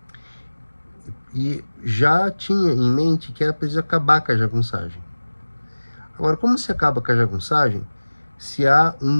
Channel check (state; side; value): inverted; both; correlation -1.00